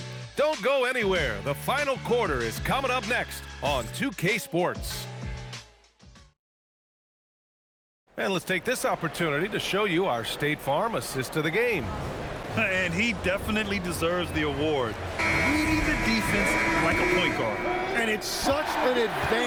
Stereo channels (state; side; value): identical; both; correlation 1.00